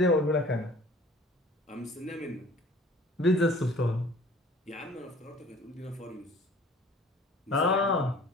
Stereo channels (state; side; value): normal; both; correlation 0.49